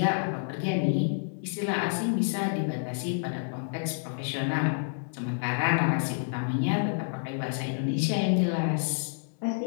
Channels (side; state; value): right; silent; digital silence